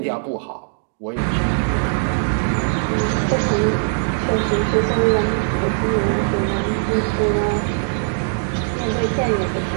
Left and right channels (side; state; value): left; silent; digital silence